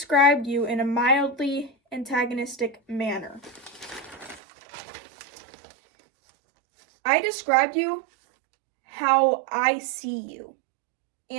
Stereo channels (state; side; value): drops out; left; at 4.4 s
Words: you in a mildly antagonistic manner. I described you how I see you